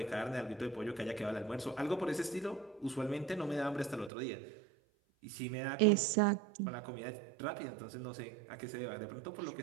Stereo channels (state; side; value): drops out; left; at 4.1 s